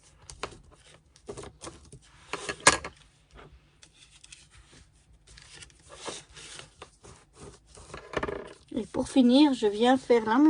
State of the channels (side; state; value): both; identical; correlation 1.00